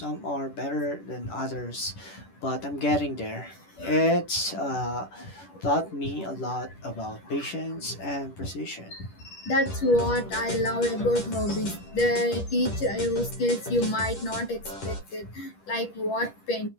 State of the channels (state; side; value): late; right; 10 ms